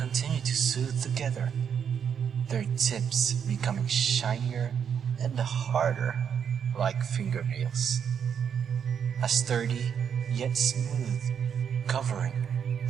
to soothe together, their tips becoming shinier and harder like fingernails. A sturdy yet smooth covering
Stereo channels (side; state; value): left; quieter; 7.7 dB